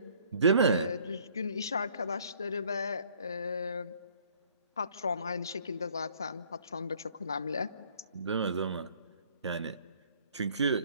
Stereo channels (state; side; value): inverted; both; correlation -0.59